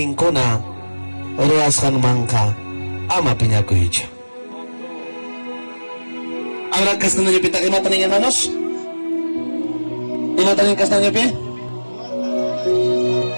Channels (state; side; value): inverted; both; correlation -1.00